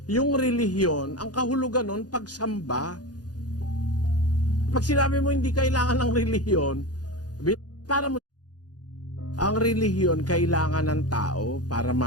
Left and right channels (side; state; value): right; late; 0.69 ms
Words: yung relihiyon, ang kahulugan nun, pagsamba. Pag sinabi mo hindi kailangan ng relihiyon, para mo... Ang relihiyon kailangan ng tao para